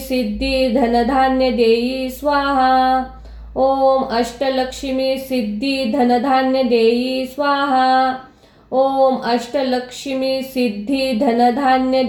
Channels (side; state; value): both; identical; correlation 1.00